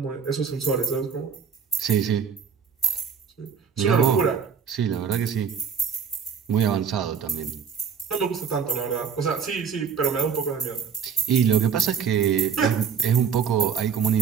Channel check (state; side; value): quieter; left; 6.9 dB